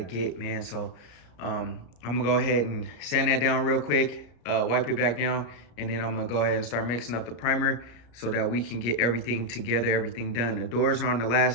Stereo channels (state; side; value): late; right; 34 ms